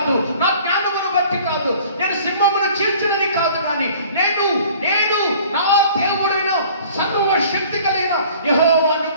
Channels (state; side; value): inverted; both; correlation -0.50